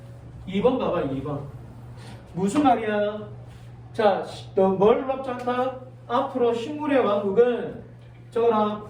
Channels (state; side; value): identical; both; correlation 1.00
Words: 2번 봐봐, 2번. 무슨 말이야? 자, 너 뭘 놀랍지 않다? 앞으로 식물의 왕국은 저거랑